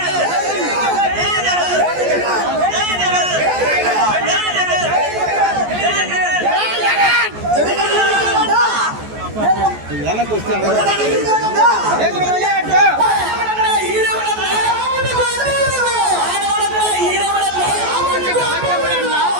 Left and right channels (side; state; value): left; late; 14 ms